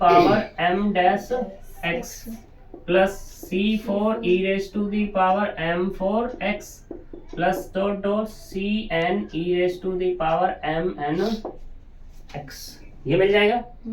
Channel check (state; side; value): identical; both; correlation 1.00